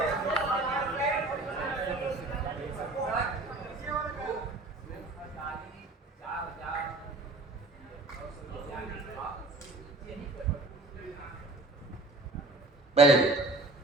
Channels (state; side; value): quieter; left; 3.0 dB